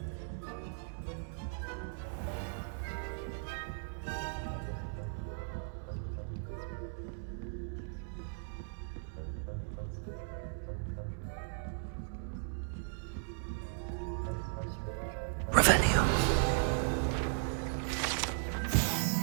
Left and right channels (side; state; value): left; silent; digital silence